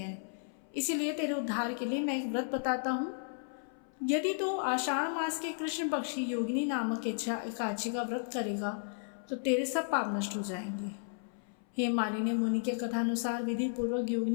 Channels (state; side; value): silent; right; 55 dB below the other